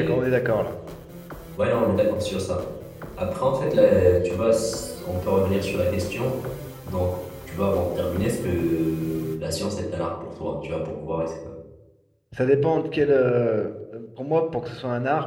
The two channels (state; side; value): identical; both; correlation 1.00